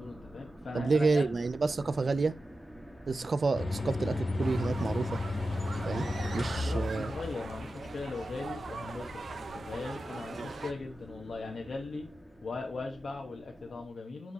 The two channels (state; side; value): normal; both; correlation 0.92